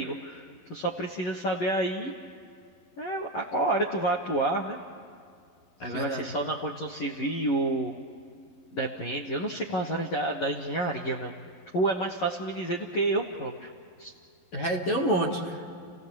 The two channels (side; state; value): right; late; 11 ms